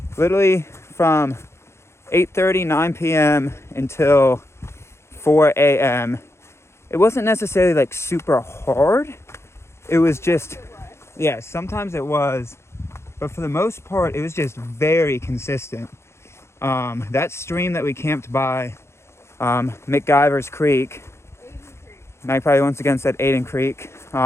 Literally from 8:30, 9 p.m. until 4 a.m. It wasn't necessarily like super hard. It was just, yeah, sometimes it was, but for the most part, it was just very consistent. That stream that we camped by, McGyver's Creek, Magpie once again said Aiden Creek,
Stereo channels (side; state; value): right; late; 0.13 ms